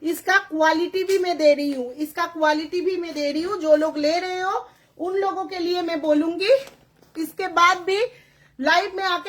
इसका क्वालिटी भी मैं दे रही हूँ, इसका क्वालिटी भी मैं दे रही हूँ। जो लोग ले रहे हो उन लोगों के लिए मैं बोलूंगी। इसके बाद भी लाइव में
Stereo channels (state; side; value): identical; both; correlation 1.00